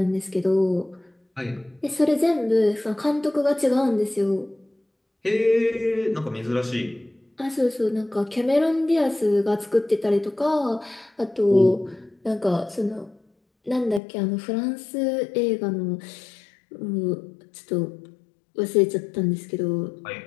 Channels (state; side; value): drops out; right; at 14.0 s